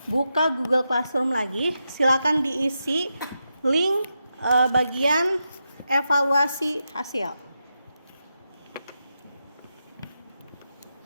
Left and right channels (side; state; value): both; inverted; correlation -0.87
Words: buka Google Classroom lagi. Silakan diisi link bagian evaluasi hasil.